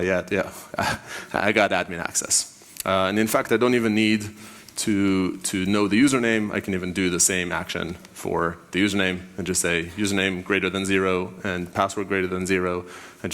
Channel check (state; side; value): identical; both; correlation 1.00